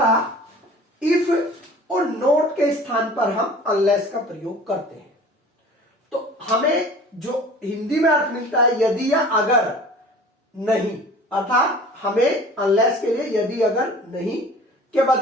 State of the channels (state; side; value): normal; both; correlation 0.44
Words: इफ और नोट के स्थान पर हम अनलेस का प्रयोग करते हैं। तो हमें जो हिंदी में अर्थ मिलता है यदि या अगर नहीं, अर्थात हमें अनलेस के लिए यदि अगर नहीं के